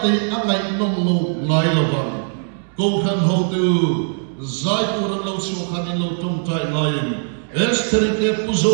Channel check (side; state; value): left; silent; 66 dB below the other